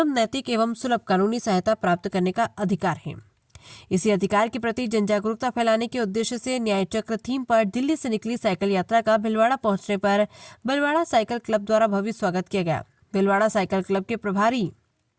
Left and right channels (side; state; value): both; identical; correlation 1.00